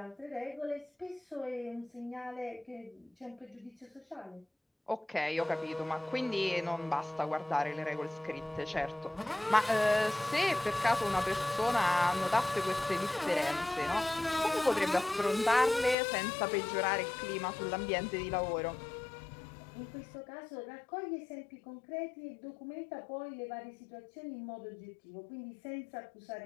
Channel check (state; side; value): drops out; right; at 16.0 s